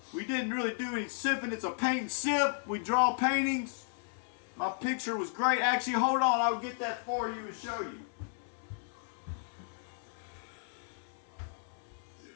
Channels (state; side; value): silent; right; 55 dB below the other